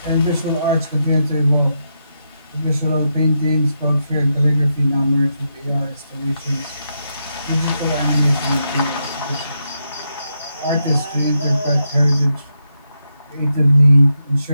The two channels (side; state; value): both; inverted; correlation -0.83